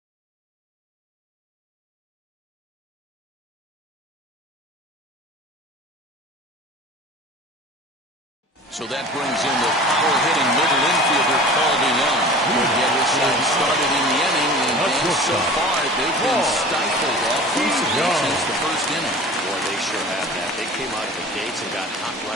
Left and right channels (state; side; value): normal; both; correlation 0.40